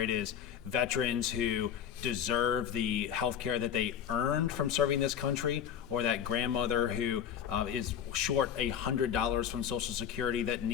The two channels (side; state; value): right; quieter; 8.9 dB